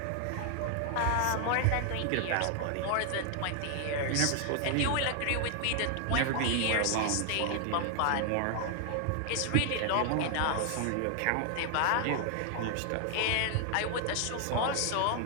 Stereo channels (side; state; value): both; different; correlation 0.00